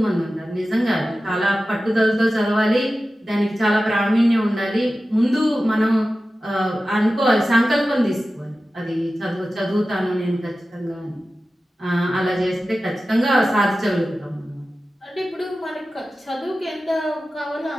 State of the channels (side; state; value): both; normal; correlation 0.94